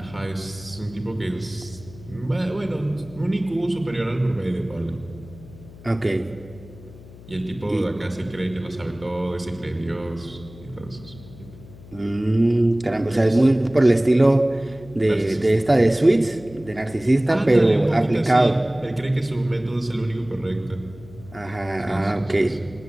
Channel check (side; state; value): left; noise; hum, 19 dB below the sound